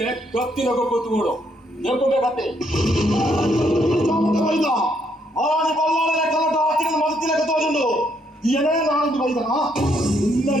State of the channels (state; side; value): normal; both; correlation 0.72